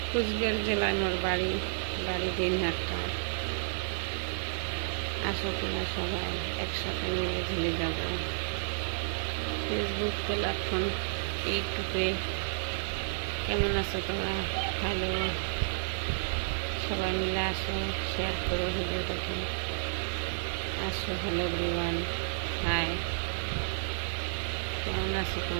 কুচবিহার জেলায় মোর বাড়ি দিনহাটা। আসো তোমরা সবাই একসাথে মিলে ঝুলে যাব। ফেসবুক প্ল্যাটফর্ম ইউটিউবে কেমন আছো তোমরা? হ্যালো, সবাই মিলে আসো, শেয়ার করো ভিডিওটাকে। আসো, হ্যালো এভরিওয়ান, হাই, কেমন আছো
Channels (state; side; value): silent; left; digital silence